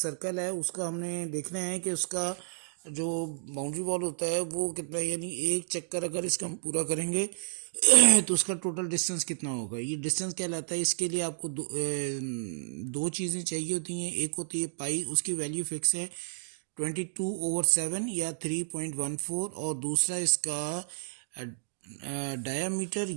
है, उसका हमने देखना है कि उसका जो बाउंड्री वॉल होता है वो कितना है, यानी एक चक्कर अगर इसका हम पूरा करेंगे तो उसका टोटल डिस्टेंस कितना होगा। ये डिस्टेंस कहलाता है। इसके लिए आपको दो चीज़ें चाहिए होती हैं। एक होती है पाई, उसकी वैल्यू फिक्स है 22/7 या 3.14, और दूसरा इसका डायामीटर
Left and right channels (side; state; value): left; silent; digital silence